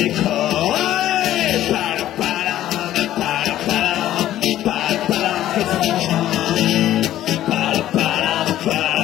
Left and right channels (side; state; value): right; quieter; 13.1 dB